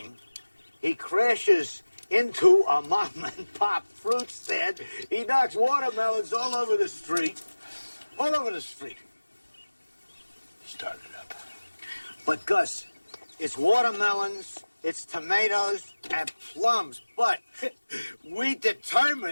He crashes into a mom and pop fruit stand. He knocks watermelons all over the street. All over the street. Start it up. But Gus, it's watermelons, it's tomatoes, and plums. But we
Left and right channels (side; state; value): both; inverted; correlation -1.00